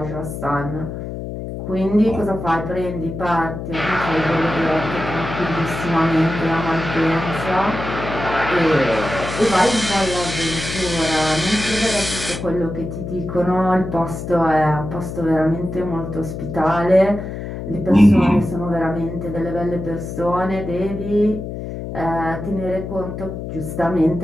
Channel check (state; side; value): noise; left; hum, 7 dB below the sound